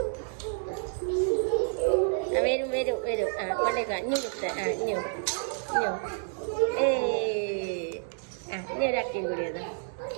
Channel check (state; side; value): silent; left; 58 dB below the other